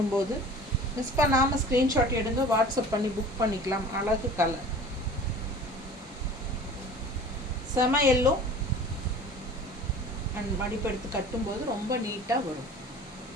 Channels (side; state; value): both; normal; correlation 0.43